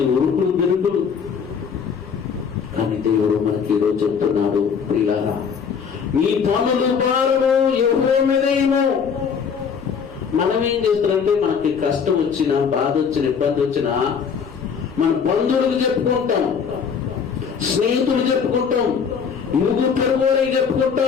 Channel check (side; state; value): right; quieter; 6.5 dB